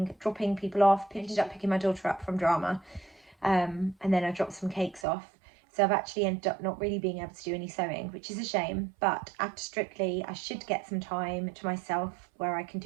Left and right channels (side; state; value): left; drops out; at 5.1 s